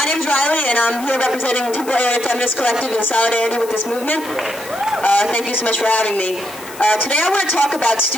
name is Riley, and I'm here representing Temple Area Feminist Collective in solidarity with this movement. Thank you so much for having me. Today I want to talk about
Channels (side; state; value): left; noise; hiss, 17 dB below the sound